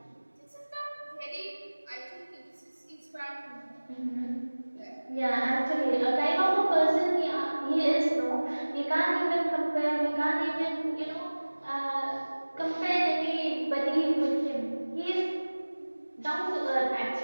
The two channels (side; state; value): both; inverted; correlation -1.00